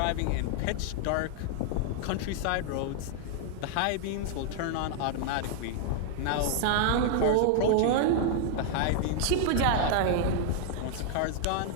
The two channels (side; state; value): both; different; correlation -0.01